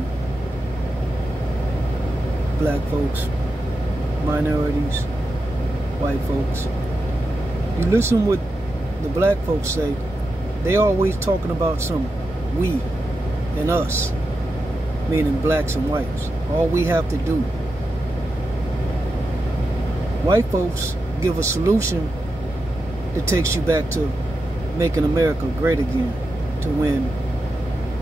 black folks, minorities, white folks, you listen what the black folks say, they always talking about some we and us, meaning blacks and whites. All we have to do. White folks give a solution that takes you back to making America great again, to when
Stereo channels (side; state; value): both; normal; correlation 0.89